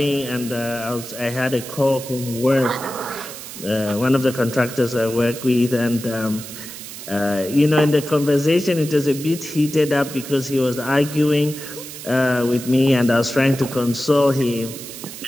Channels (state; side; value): noise; right; hiss, 12 dB below the sound